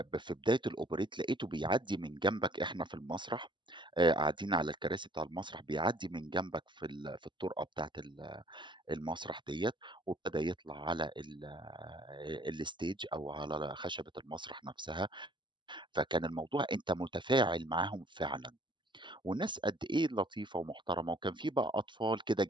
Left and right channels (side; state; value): left; late; 0.23 ms